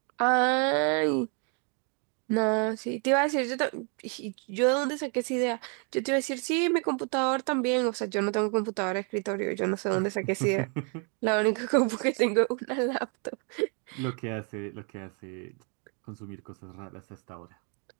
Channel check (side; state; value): left; quieter; 38.3 dB